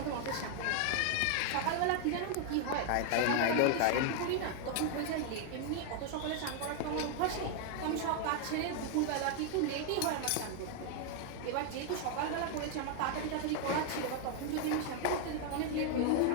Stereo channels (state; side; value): different; both; correlation 0.00